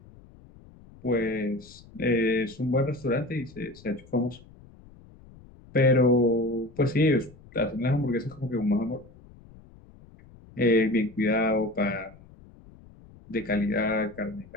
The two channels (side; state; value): left; noise; rumble, 23 dB below the sound